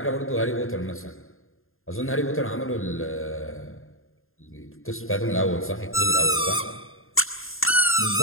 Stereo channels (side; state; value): right; late; 0.61 ms